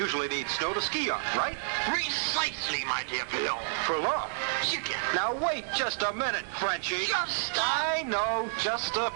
need snow to ski on, right? Precisely, my dear fellow. For long. Chicken. Now, wait just a minute, Frenchie. I know, just a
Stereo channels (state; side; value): silent; left; digital silence